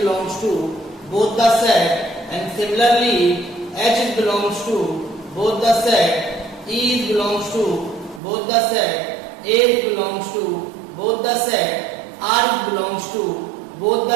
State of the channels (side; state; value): left; drops out; at 8.2 s